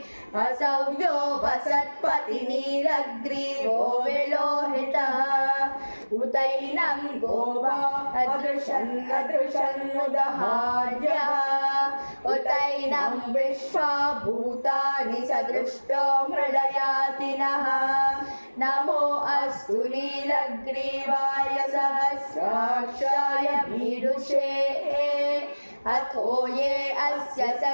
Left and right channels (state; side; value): inverted; both; correlation -1.00